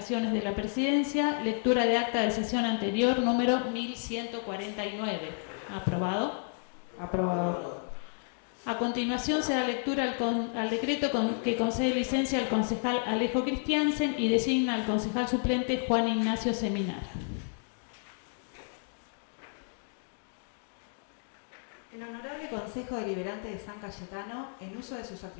de la Presidencia, lectura de acta de sesión anterior, número 1149. ¿Aprobado? Aprobado. A continuación se da lectura al decreto que concede licencia al concejal Alejo Christiansen y designa al concejal suplente Juan Ignacio Seminara. El Honorable Consejo Deliberante de San Cayetano, en uso de sus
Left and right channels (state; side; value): silent; right; 57 dB below the other